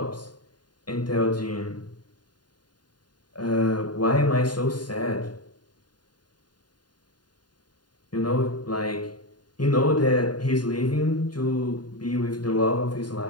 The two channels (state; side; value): late; right; 0.70 ms